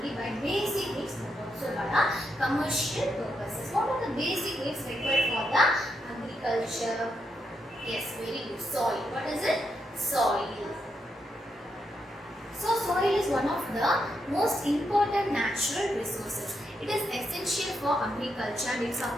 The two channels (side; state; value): both; normal; correlation 0.82